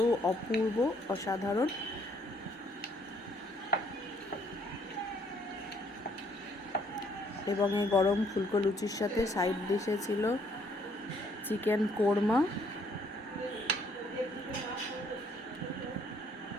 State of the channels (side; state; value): both; normal; correlation 0.65